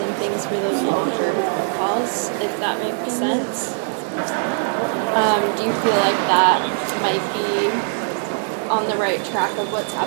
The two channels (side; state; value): left; silent; 65 dB below the other